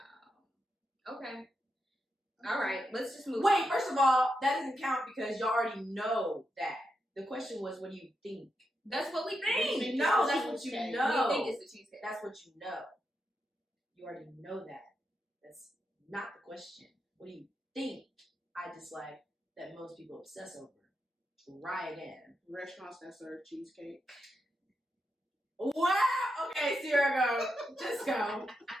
Wow. Okay. All right. Let's just move. Wait, first of all, that doesn't count because y'all already know that. The question was, what do you think? That's what we You think. think No, it's that's the what you cheesecake. know. We think it's the cheesecake. That's what you know. You already know that. That's not the question. What do you think I dislike that most people obsess over? Try again. Restaurants that serve cheesecake. Wow! Okay, Sierra, go. Just go.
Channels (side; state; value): both; normal; correlation 0.85